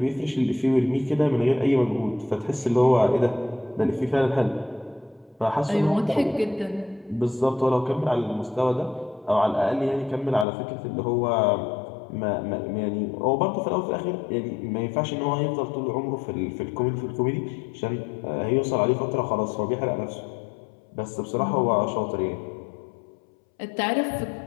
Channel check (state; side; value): drops out; right; at 10.5 s